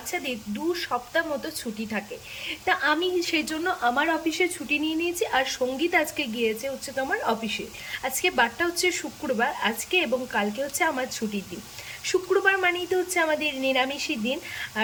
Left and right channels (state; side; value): identical; both; correlation 1.00